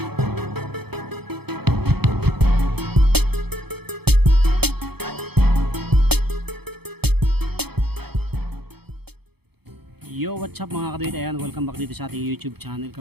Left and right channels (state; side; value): late; left; 0.97 ms